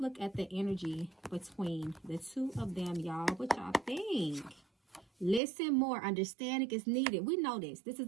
look at the energy between the two of them, y'all. What y'all think? Listen more. Understanding is needed. We know this. This is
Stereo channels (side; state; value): left; drops out; at 5.4 s